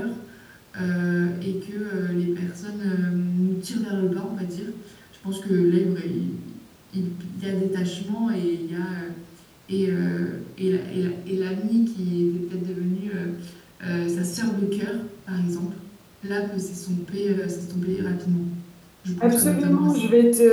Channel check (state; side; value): identical; both; correlation 1.00